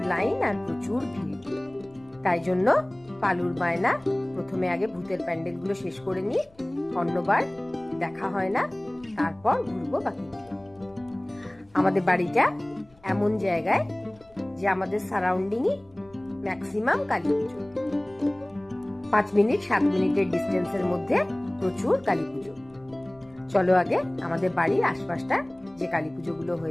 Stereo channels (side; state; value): left; noise; rumble, 29 dB below the sound